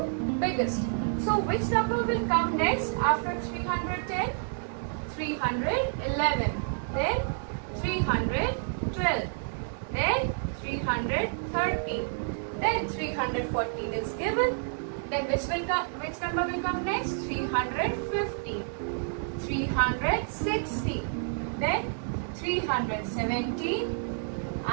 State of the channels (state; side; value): silent; left; digital silence